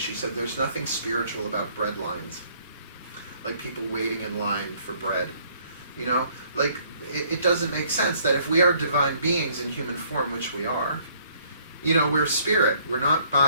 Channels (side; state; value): both; inverted; correlation -0.62